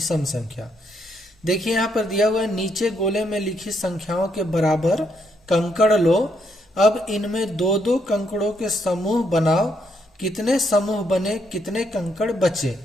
संख्या। देखिए यहाँ पर दिया हुआ है, नीचे गोले में लिखी संख्याओं के बराबर कंकड़ लो। अब इनमें दो दो कंकड़ों के समूह बनाओ। कितने समूह बने, कितने कंकड़ बचे,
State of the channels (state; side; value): normal; both; correlation 0.75